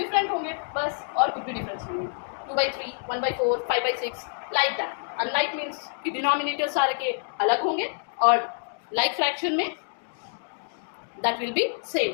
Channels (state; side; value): silent; right; digital silence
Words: होंगे, बस, और कुछ भी डिफरेंस नहीं है। 2/3 1/4 5/6 लाइक दैट। अनलाइक मीन्स कि डिनोमिनेटर सारे के अलग होंगे, और लाइक फ्रैक्शन में that will be